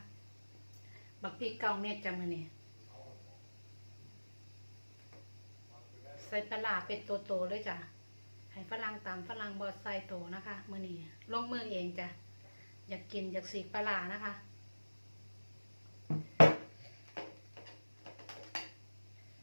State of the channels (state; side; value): inverted; both; correlation -1.00